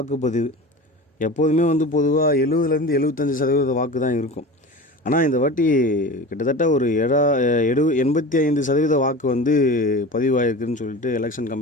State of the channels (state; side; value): normal; both; correlation 0.33